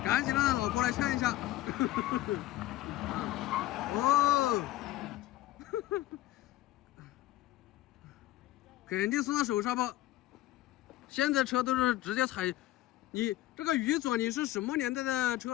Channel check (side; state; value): right; quieter; 15.4 dB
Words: 赶紧让老婆来劝一下。哦，肯定送到手刹吧。现在车都是直接踩，你这个宇左你是什么年代的